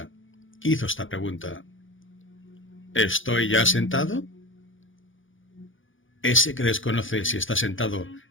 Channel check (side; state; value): right; late; 0.57 ms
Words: hizo esta pregunta: ¿Estoy ya sentado? Ese que desconoce si está sentado